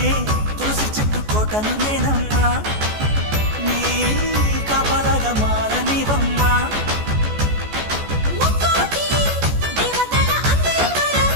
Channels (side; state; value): left; late; 14 ms